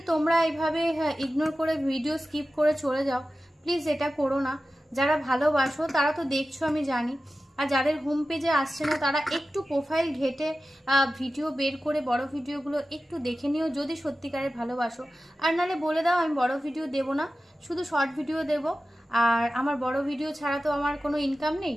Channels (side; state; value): both; normal; correlation 0.94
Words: তোমরা এইভাবে ইগনোর করে ভিডিও স্কিপ করে চলে যাও, প্লিজ এটা করো না। যারা ভালোবাসো তারা তো দেখছো আমি জানি, আর যাদের হোম পেজে আসছে না তারা একটু প্রোফাইল ঘেটে ভিডিও বের করে বড় ভিডিওগুলো একটু দেখে নিও যদি সত্যিকারের ভালোবাসো। আর নালে বলে দাও আমি বড় ভিডিও দেব না, শুধু শর্ট ভিডিও দেব। আর আমার বড় ভিডিও ছাড়া তো আমার কোনো ইনকাম নেই,